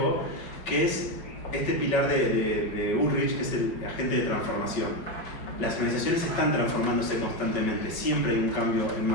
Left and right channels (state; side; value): late; right; 5.3 ms